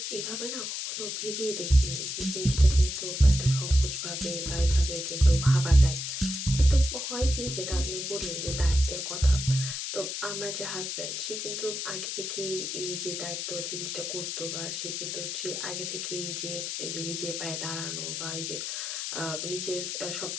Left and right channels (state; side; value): noise; left; hiss, 4 dB below the sound